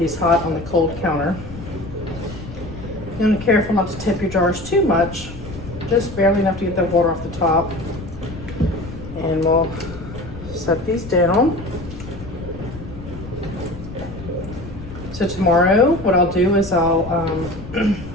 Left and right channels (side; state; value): left; noise; rumble, 12 dB below the sound